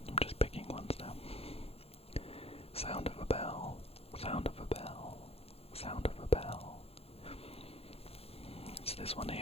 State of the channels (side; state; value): right; late; 0.29 ms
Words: I'm just picking ones now. Sound of a bell. It's this one